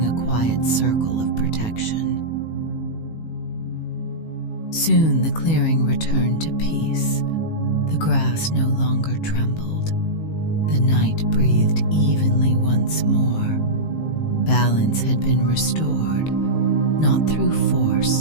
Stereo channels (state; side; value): late; right; 18 ms